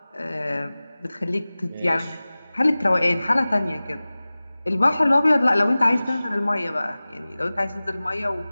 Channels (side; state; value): both; inverted; correlation -0.98